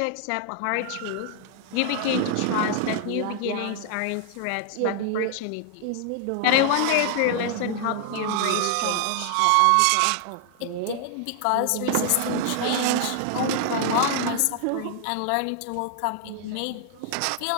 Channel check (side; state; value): both; different; correlation 0.00